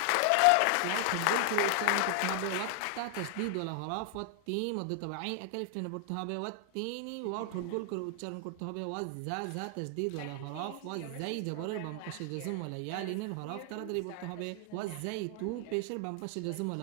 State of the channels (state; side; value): different; both; correlation 0.00